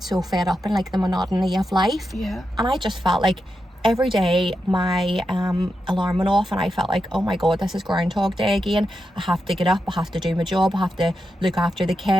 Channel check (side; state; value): both; normal; correlation 0.87